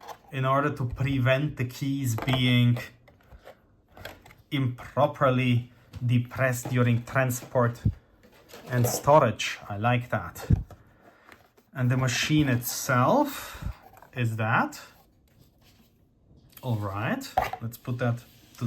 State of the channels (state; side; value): identical; both; correlation 1.00